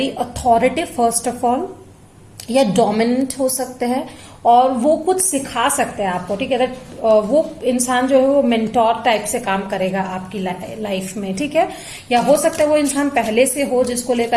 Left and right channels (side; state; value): both; identical; correlation 1.00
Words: authoritative first of all, या डोमिनेंट हो सकते हैं, और वो कुछ सिखा सकते हैं आपको। ठीक है, दैट वो इंसान जो है वो मेंटोर टाइप से काम करेगा आपकी लाइफ में। ठीक है, या हो सकता है वो इंसान पहले से हो जिसको